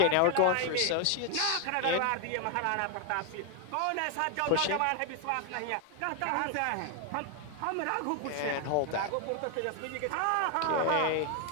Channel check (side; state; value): both; different; correlation 0.01